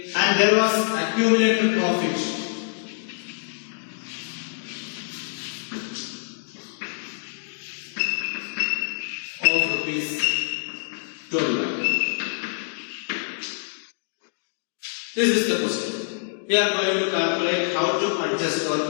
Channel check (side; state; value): right; silent; digital silence